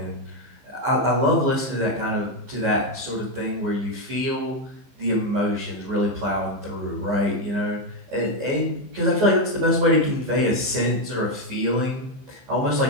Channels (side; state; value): left; late; 15 ms